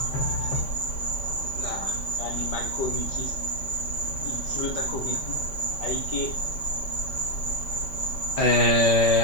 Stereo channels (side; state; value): right; late; 5.1 ms